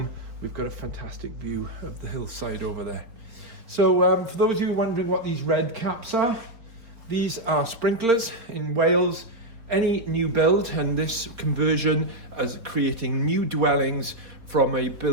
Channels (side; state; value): left; late; 4.2 ms